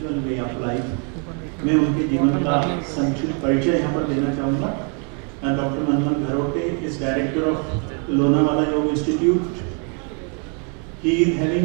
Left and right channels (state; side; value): quieter; left; 37.5 dB